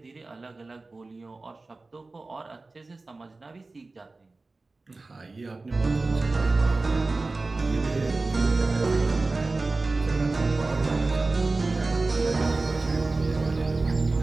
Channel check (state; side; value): quieter; left; 3.4 dB